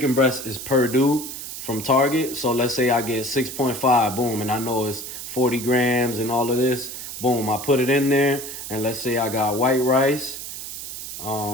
breast is per due from Target. So let's say I get 6.5, boom, and I know it's 40 grams and all of this, boom, I put it in there. And let's say I got white rice,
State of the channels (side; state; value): right; noise; hiss, 9 dB below the sound